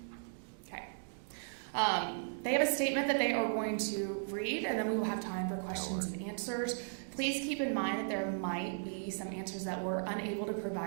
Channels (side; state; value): left; silent; digital silence